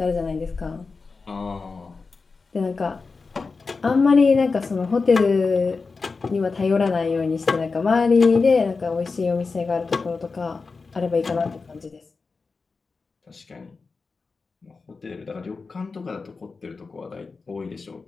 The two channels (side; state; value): right; quieter; 4.4 dB